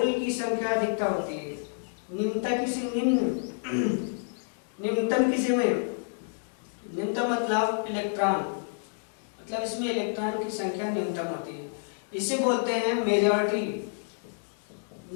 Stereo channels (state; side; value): silent; right; digital silence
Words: की संख्या अधिकता होती है, निम्नता किसी निम्नतम किसी में, निम्नतम मतलब इलेक्ट्रॉन, मतलब इसमें इलेक्ट्रॉन की संख्या न्यूनतम होती है। इसे बोलते हैं मेजॉरिटी,